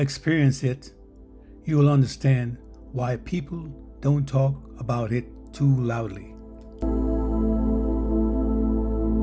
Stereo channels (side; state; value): both; identical; correlation 1.00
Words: it, you will understand why people don't talk about it too loudly.